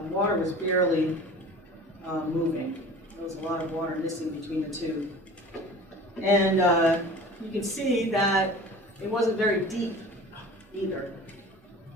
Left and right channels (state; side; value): normal; both; correlation 0.40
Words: water was barely moving. There was a lot of water missing between the two. And you can see that it wasn't very deep either.